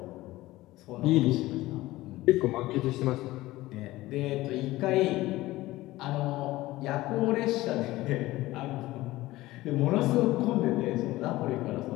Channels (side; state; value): right; quieter; 17.8 dB